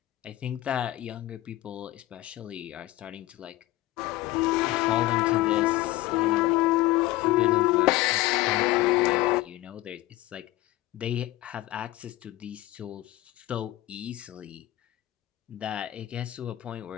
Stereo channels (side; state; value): right; quieter; 17.0 dB